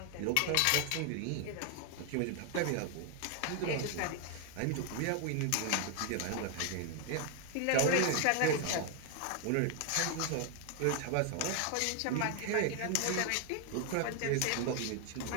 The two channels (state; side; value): different; both; correlation 0.00